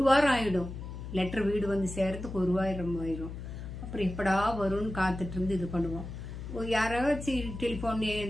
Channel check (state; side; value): noise; left; hum, 9 dB below the sound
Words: வாரம் ஆகிடும். லெட்டர் வீடு வந்து சேர்றதுக்கு ஒரு வாரம் ஆயிடும். அப்புறம் எப்படா வரும்னு காத்துட்டு இருந்து இது பண்ணுவோம். யாராச்சும் டெலிஃபோன்